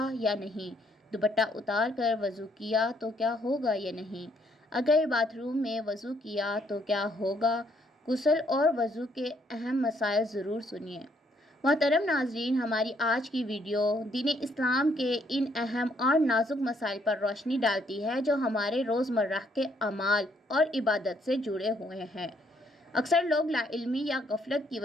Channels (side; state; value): both; normal; correlation 0.70